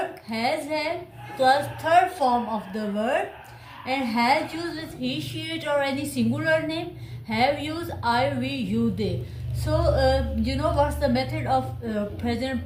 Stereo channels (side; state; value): both; identical; correlation 1.00